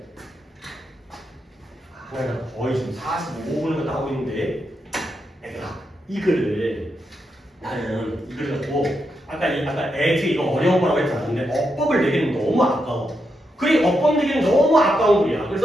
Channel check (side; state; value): both; normal; correlation 0.84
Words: 하나가 거의 지금 45분을 갖다 하고 있는데 얘들아 이 글을 나는 이 글을 갖고 아까 애지 이거 어려운 거라고 했지 않았는데 어법을 내기는 너무 아까워. 그래 어법 내기는 너무 아까운 글이야.